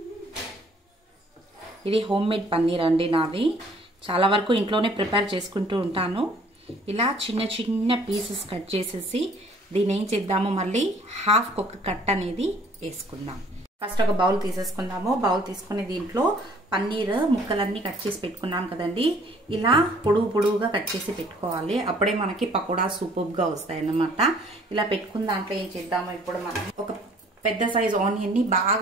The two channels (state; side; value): normal; both; correlation 0.57